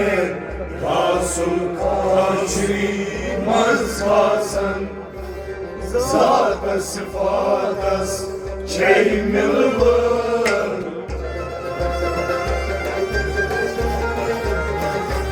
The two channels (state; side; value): identical; both; correlation 1.00